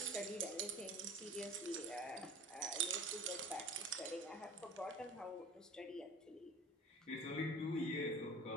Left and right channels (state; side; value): normal; both; correlation 0.41